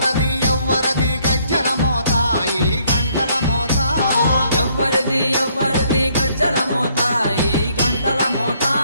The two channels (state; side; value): inverted; both; correlation -0.67